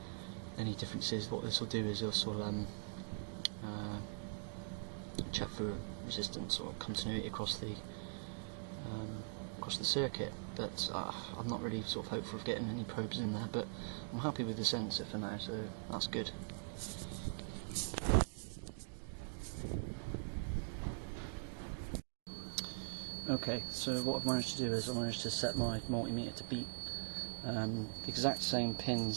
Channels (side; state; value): left; silent; digital silence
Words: any differences. What this will do is this will check for resistance or continuity across the circuit, but I'm not really sort of hopeful of getting any probes in there, but I'm happy with the sensor for now, so that's good. Okay, so what I've managed to do is I managed to set my multimeter to beat the exact same